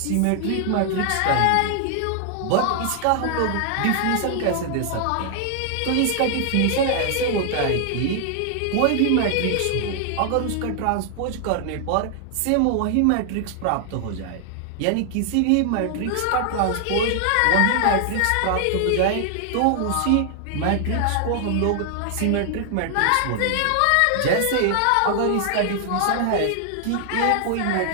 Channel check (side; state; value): both; different; correlation 0.00